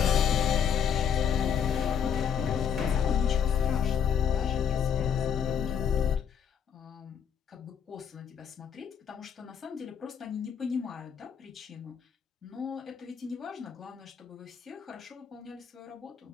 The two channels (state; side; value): quieter; right; 7.8 dB